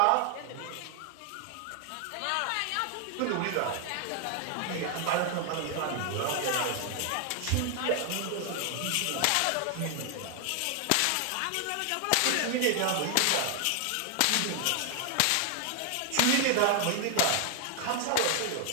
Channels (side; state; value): both; different; correlation 0.00